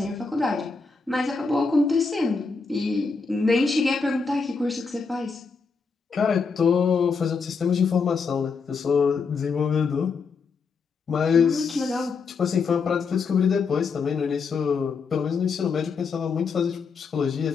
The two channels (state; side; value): quieter; right; 5.0 dB